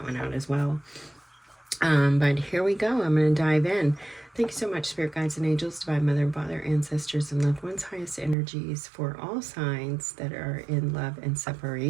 one out as well. But here we go. I'm going to dive in. Thank you so much, Spirit Guides and Angels, Divine Mother and Father, Ancestors, and Loved Ones, highest energies for all signs that are in love and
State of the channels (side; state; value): left; drops out; at 8.3 s